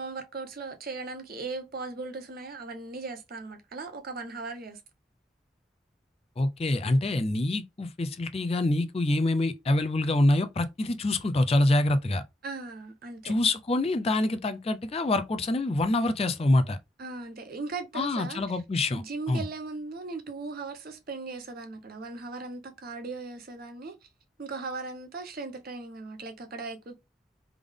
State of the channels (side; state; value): both; normal; correlation 0.76